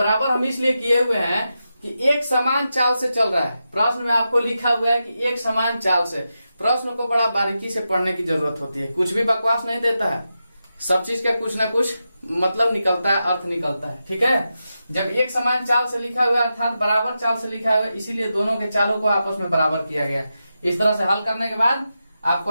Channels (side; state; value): both; inverted; correlation -0.89